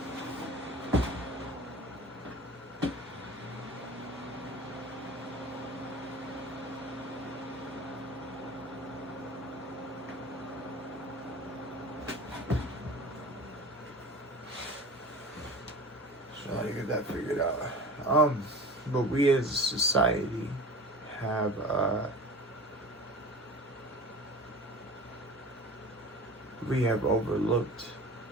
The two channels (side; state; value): both; normal; correlation 0.38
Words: So how to get that figured out. But we as a society have we have overlooked